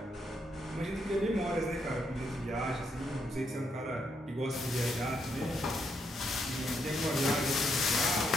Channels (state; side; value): normal; both; correlation 0.77